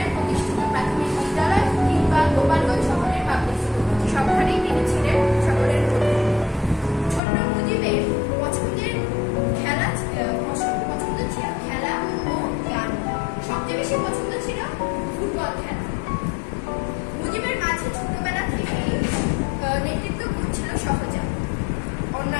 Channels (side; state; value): right; drops out; at 7.2 s